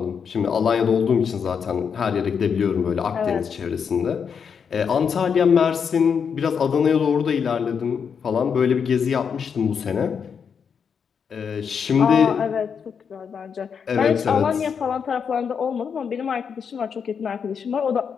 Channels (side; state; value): right; quieter; 6.7 dB